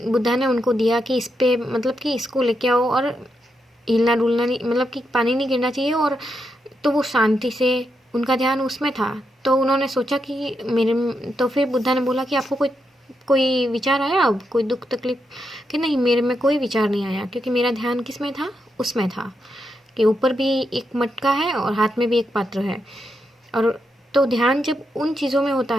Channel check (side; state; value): both; normal; correlation 0.83